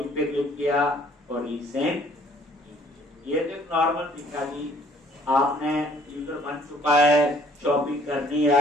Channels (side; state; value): both; normal; correlation 0.59